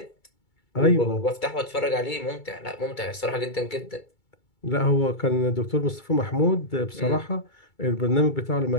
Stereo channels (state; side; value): late; right; 2.3 ms